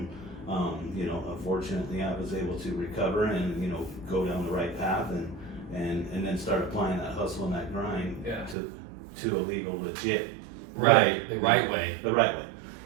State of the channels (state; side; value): drops out; left; at 8.6 s